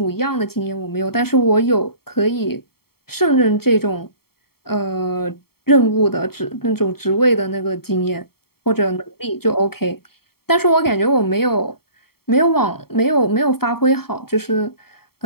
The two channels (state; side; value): late; right; 0.95 ms